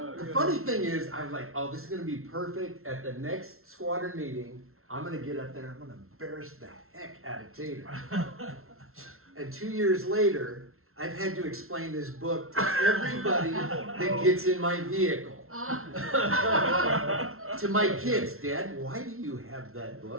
the funny thing is, I'm like, oh, this is going to be perfect. At the next squadron meeting, I'm going to get up there and I'm going to embarrass the heck out of Tater. And 2 years later, I've had to explain this book to everybody that gets in my vehicle. To my kids, Dad, why do you have that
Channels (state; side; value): late; left; 0.62 ms